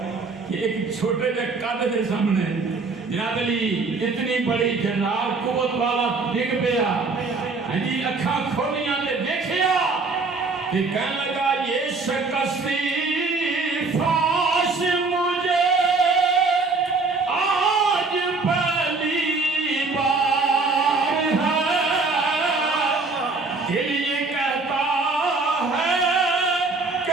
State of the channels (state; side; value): quieter; left; 3.9 dB